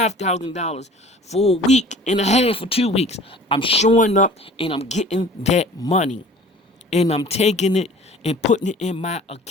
for a week and a half or 2 weeks, I'm showing up and I'm getting that money. And I'm taking it and putting it in my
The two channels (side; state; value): both; normal; correlation 0.46